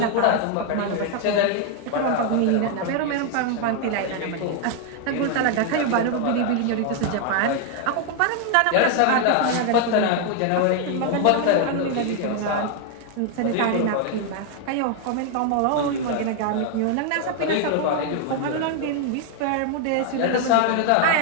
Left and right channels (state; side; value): different; both; correlation 0.00